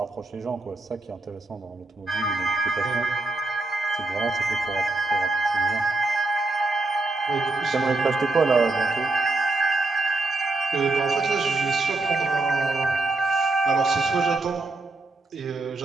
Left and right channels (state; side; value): quieter; left; 3.1 dB